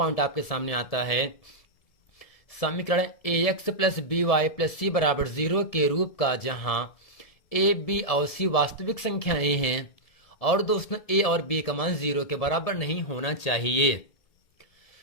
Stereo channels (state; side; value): late; right; 1.7 ms